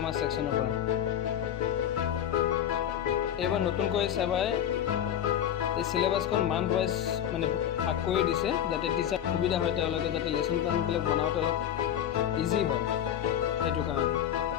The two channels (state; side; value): quieter; right; 10.2 dB